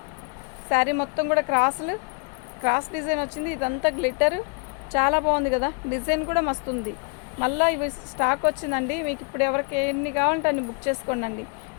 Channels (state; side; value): quieter; right; 33.0 dB